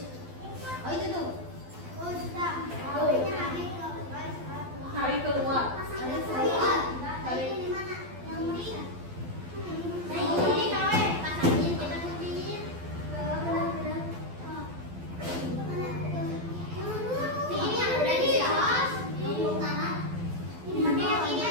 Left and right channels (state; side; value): late; left; 12 ms